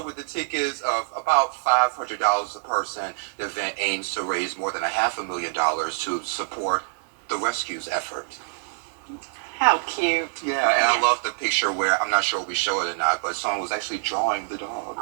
with the tickets of about $500 a person, the event aims to raise more than $500,000 to support the rescues effort. How cute. Yeah, and I love the picture where, I'm not sure if we show it or not, but someone was actually drawing the dog.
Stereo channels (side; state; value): left; silent; 62 dB below the other